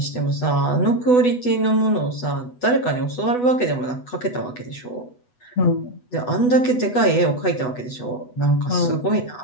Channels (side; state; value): right; late; 8.1 ms